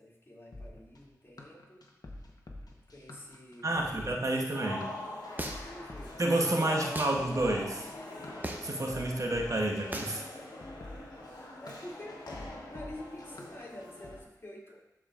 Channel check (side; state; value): both; normal; correlation 0.71